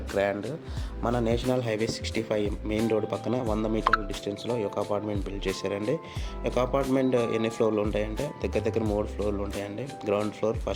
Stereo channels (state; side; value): identical; both; correlation 1.00